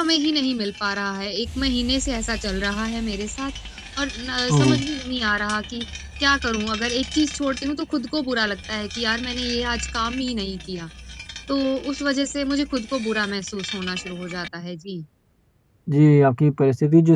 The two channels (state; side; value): identical; both; correlation 1.00